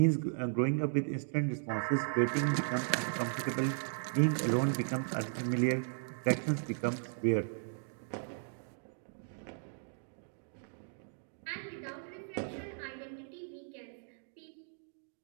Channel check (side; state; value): left; silent; digital silence